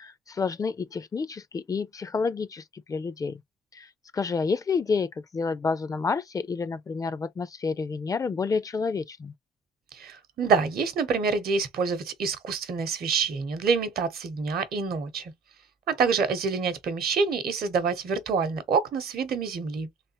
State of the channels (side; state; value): both; normal; correlation 0.54